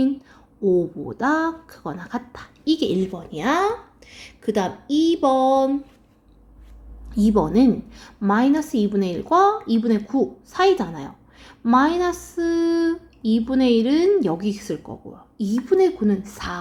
5보다 크거나 같다. 이게 1번이야. 그 다음 2번은 마이너스 2분의 1과 2분의 9 사이잖아요. 마이너스 2분의 1은 여기 있을 거고요. 2분의 9는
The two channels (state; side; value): identical; both; correlation 1.00